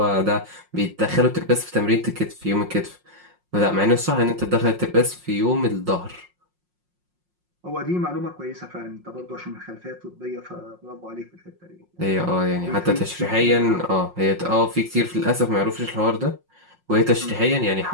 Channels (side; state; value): left; late; 5.6 ms